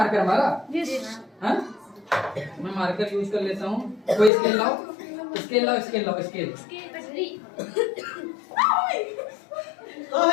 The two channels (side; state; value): right; drops out; at 4.3 s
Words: हमारा? हाँ, मैं मार्कर यूज कर लेता हूँ। कोई स्केल लाओ, स्केल लाओ, स्केल लाओ, स्केल। जल्दी